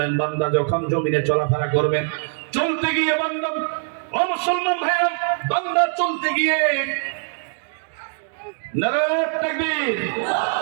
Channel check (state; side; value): silent; left; 59 dB below the other